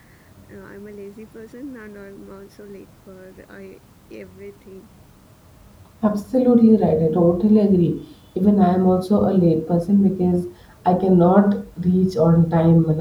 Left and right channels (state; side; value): identical; both; correlation 1.00